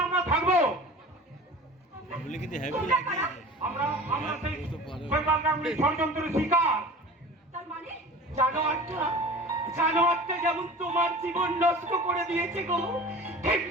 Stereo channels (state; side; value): normal; both; correlation 0.38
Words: আমরা থাকবো। তোমরা কারা? আমরা সেই শৈবাল গাঙ্গুলির ষড়যন্ত্রের শিকার। তার মানে জানোয়ারটা যেমন তোমার জীবন নষ্ট করে দিয়েছে গো,